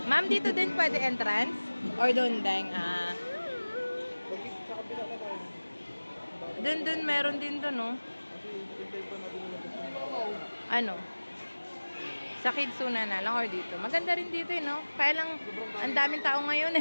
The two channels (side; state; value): both; inverted; correlation -1.00